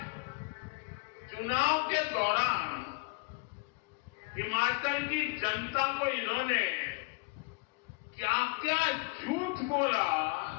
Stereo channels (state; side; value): quieter; right; 28.2 dB